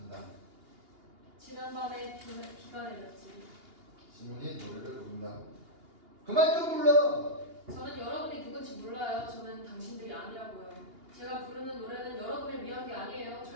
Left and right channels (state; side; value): late; left; 2.8 ms